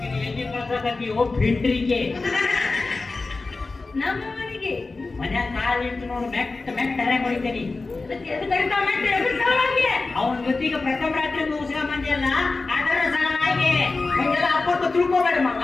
ಭಿಂಡ್ರಿಗೆ ನಮ್ಮ ಮನೆಗೆ ಮನ್ಯಾಗ ಕಾಲಿಟ್ಟು ನೋಡು ಮೆಟ್ಟ ಹರ್ಯಾಗ ಹೊಡಿತೇನಿ. ಅವನ ಜೊತೆಗೆ ಪ್ರಥಮ ರಾತ್ರಿ ಮುಗಿಸ್ಕೊಂಡ್ ಬಂದಿಲ್ಲ ಅದರ ಸಲುವಾಗಿ ಹಂಗೆಲ್ಲ ಅಪ್ಪಟ್ಟು ತಿಳ್ಕೋಬೇಡ ಮಗ.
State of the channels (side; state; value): right; quieter; 3.7 dB